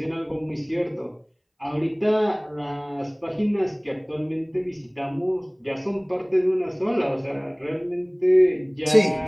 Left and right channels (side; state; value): both; identical; correlation 1.00